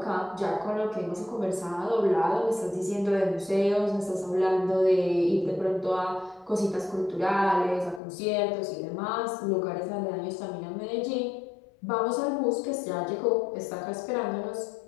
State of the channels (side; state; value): right; drops out; at 8.0 s